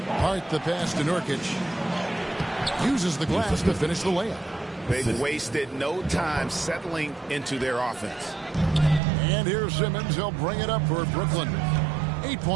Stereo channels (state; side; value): drops out; left; at 9.0 s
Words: Hart the pass to Nurkic. Uses the glass to finish the layup. They've wasted no time settling into their offense. And here's Simmons. He'll bring it up for Brooklyn.